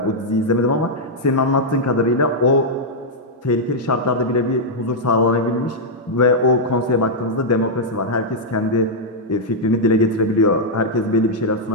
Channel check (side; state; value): both; normal; correlation -0.04